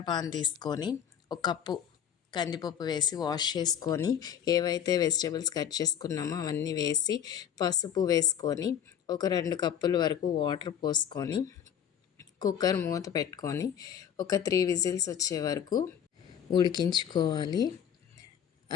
పాన్ తీసుకొని ఒక కప్పు కందిపప్పు వేసి వాష్ చేసుకొని, ఏవైతే వెజిటేబుల్స్ కట్ చేసుకున్నామో అవన్నీ వేసి, పసుపు వేసుకొని, ఒక 2 కప్పుల వరకు వాటర్ పోసుకొని, కుక్కర్ మూత పెట్టుకొని ఒక 3 విజిల్స్ వచ్చే వరకు ఉడికించుకోవాలి.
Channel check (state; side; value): quieter; right; 9.0 dB